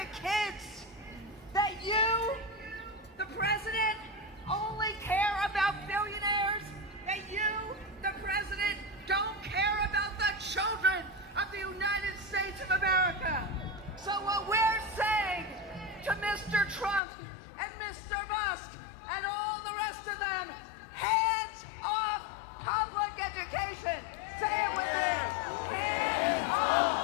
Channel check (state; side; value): drops out; right; at 17.0 s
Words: kids? That you, the president, only care about billionaires? That you, the president, don't care about the children of the United States of America? So what we're saying to Mr. Trump and Mr. Musk and all the rest of them, hands off public education. Say it with me. Hands